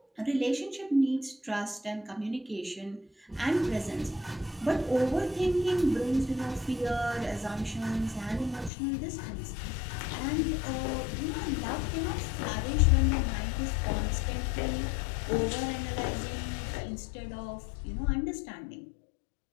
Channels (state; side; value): drops out; right; at 8.7 s